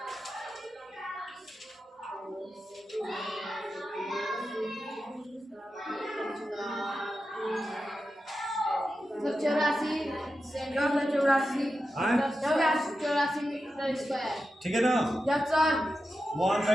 ठीक है ना?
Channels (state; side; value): normal; both; correlation 0.90